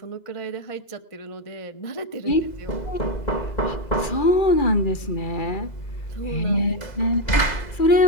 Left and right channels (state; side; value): late; right; 2.0 ms